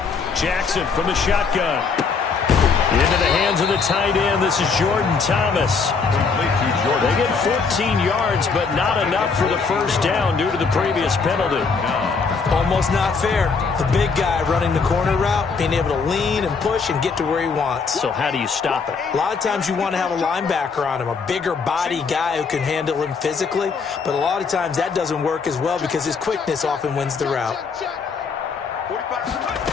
Jackson from the shotgun. Into the hands of the tight end. This is Jordan Thomas. They get 14 yards, but not enough for the first down due to the previous penalty. Almost not fair. The big guy running the corner route, being able to lean and push and get to where he wants. So how do you stop it? A lot of times you want to have a linebacker on him, a bigger body guy who can handle him physically. But a lot of times that doesn't work as well because his quickness often wins the route.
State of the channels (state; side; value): quieter; right; 5.1 dB